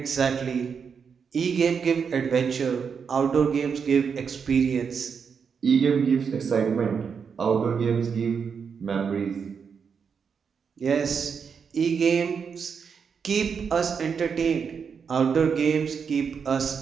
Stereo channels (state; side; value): quieter; left; 6.3 dB